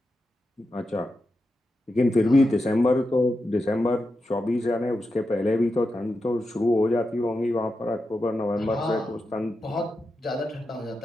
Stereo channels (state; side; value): normal; both; correlation 0.89